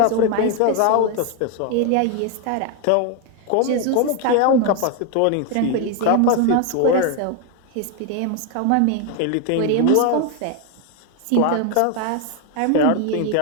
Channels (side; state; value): both; different; correlation 0.01